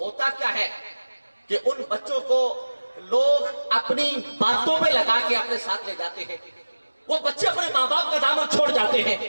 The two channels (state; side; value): inverted; both; correlation -1.00